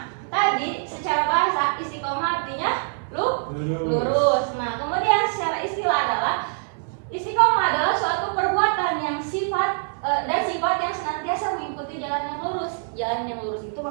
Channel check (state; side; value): silent; left; 62 dB below the other